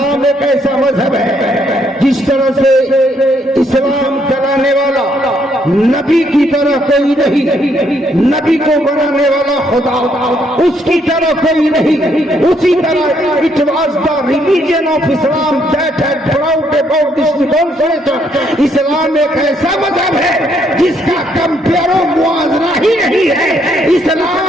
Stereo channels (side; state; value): both; normal; correlation 0.71